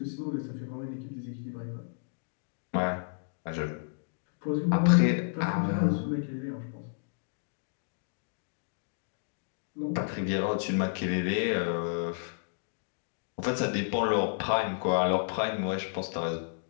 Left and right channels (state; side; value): silent; right; digital silence